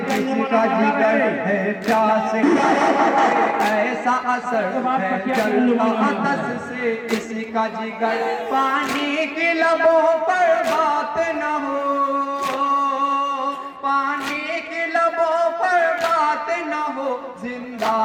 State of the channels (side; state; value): both; identical; correlation 1.00